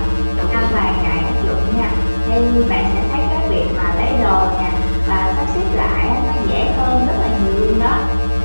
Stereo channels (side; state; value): both; inverted; correlation -1.00